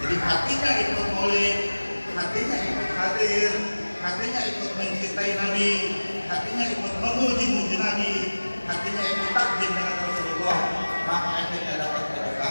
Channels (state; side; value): inverted; both; correlation -1.00